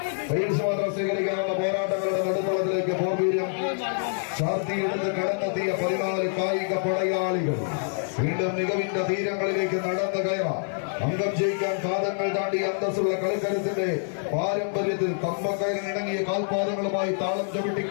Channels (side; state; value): right; silent; 57 dB below the other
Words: പരീക്ഷ മാത്രം സ്വീകരിക്കാനുള്ള പോരാട്ടങ്ങളുടെ നടുത്തളത്തിലേക്ക് പോർവീര്യം ശാർത്തിയെടുത്ത് കടന്നെത്തിയ 14 കായിക പടയാളികൾ വീണ്ടും മികവിന്റെ തീരങ്ങളിലേക്ക് നടന്നു കയറാം. അംഗം ജയിക്കാൻ പാദങ്ങൾ താണ്ടി അന്തസ്സുള്ള കളിക്കരുത്തിന്റെ പാരമ്പര്യത്തിൽ കമ്പക്കയറിനിണങ്ങിയ കാൽപാദങ്ങളുമായി താളം ചവിട്ടി